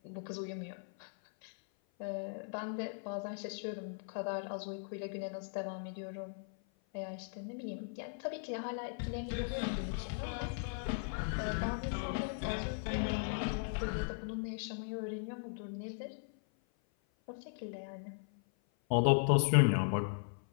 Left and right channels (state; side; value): silent; right; 52 dB below the other